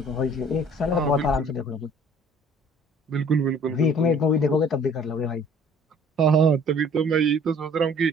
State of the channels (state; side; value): normal; both; correlation 0.53